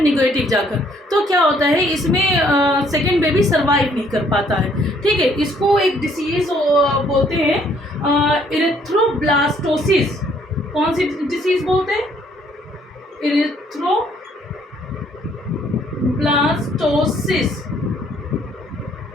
नेगेटिव जाकर। तो क्या होता है, इसमें सेकेंड बेबी सर्वाइव नहीं कर पाता है। ठीक है, इसको एक डिसीज बोलते हैं इरिथ्रोब्लास्टोसिस। कौन सी डिसीज बोलते हैं, इरिथ्रोब्लास्टोसिस।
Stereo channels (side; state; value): both; normal; correlation 0.64